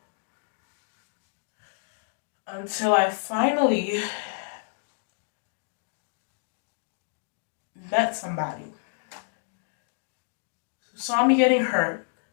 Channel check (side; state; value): right; silent; 59 dB below the other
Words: Until I finally met somebody who saw me getting hurt,